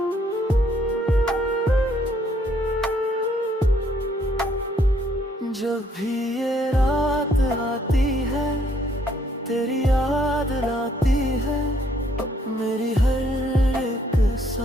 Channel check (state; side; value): normal; both; correlation 0.67